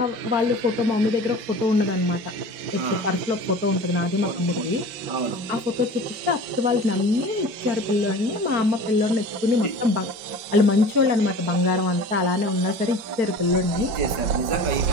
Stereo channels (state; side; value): late; left; 5.2 ms